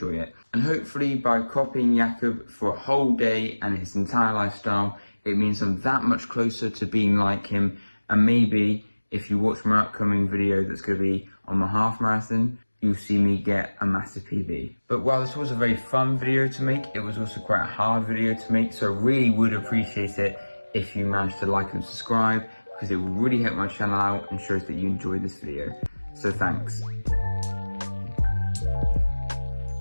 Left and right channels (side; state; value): both; inverted; correlation -1.00